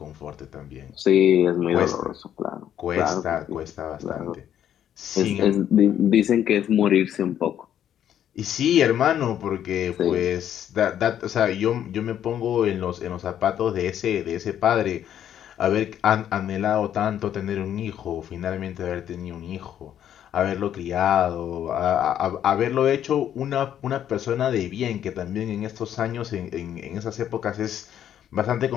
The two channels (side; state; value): right; quieter; 10.3 dB